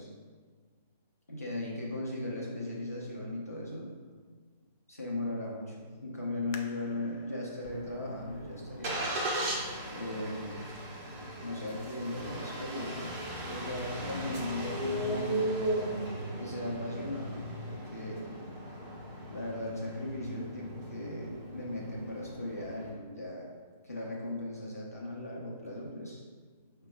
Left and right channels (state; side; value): inverted; both; correlation -0.50